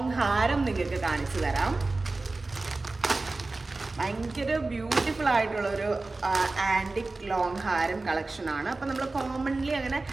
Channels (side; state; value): left; quieter; 3.4 dB